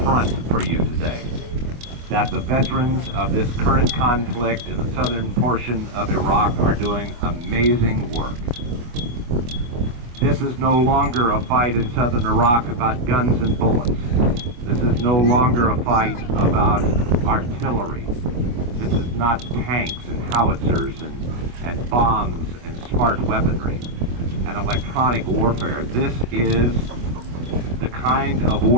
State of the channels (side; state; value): left; late; 25 ms